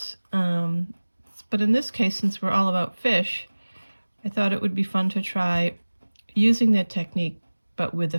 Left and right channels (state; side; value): inverted; both; correlation -1.00